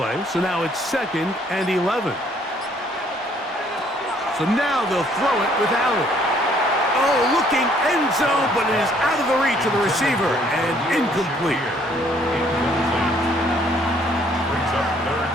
so now it's second and 11. So now they'll throw it with Allen. Oh, looking end zone, but it is out of the reach of the receiver and incomplete. Brings up third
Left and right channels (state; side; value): normal; both; correlation 0.63